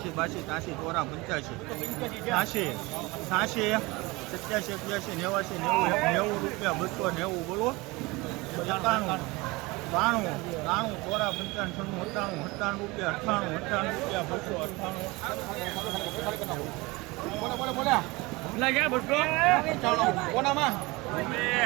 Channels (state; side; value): quieter; left; 23.4 dB